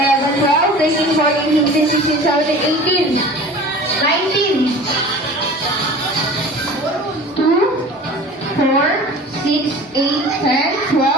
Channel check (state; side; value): normal; both; correlation 0.41